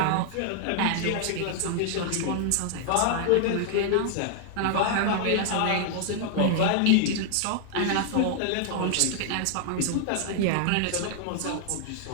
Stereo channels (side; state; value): both; different; correlation -0.01